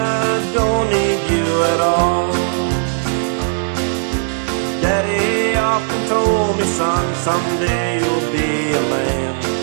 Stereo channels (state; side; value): silent; left; 68 dB below the other